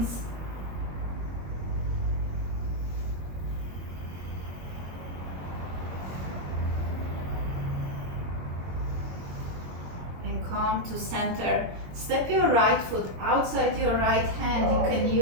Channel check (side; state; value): left; late; 22 ms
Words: Come to center. Step your right foot outside your right hand. You can